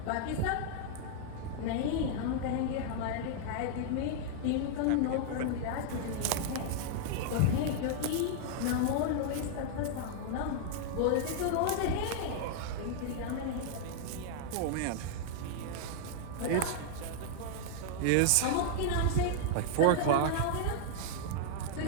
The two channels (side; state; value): both; different; correlation -0.01